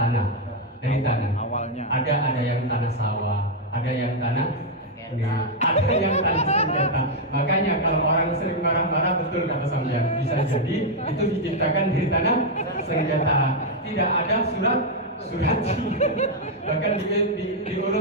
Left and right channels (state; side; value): normal; both; correlation 0.00